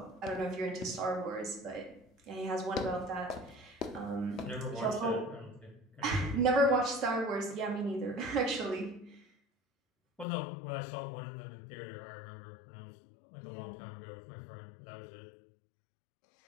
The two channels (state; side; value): drops out; right; at 10.2 s